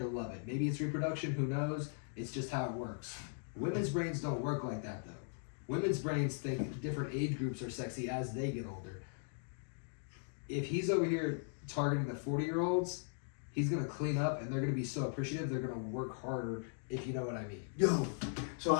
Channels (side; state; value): right; silent; digital silence